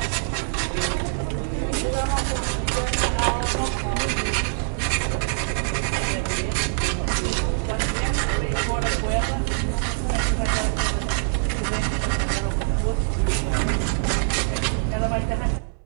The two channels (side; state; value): left; silent; 62 dB below the other